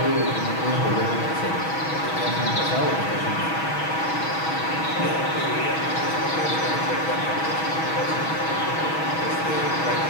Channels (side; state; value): right; late; 6.2 ms